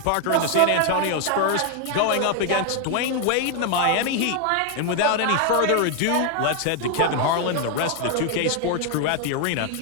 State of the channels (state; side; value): different; both; correlation 0.01